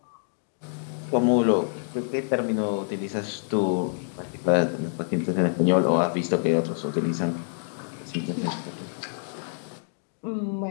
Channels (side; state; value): right; silent; digital silence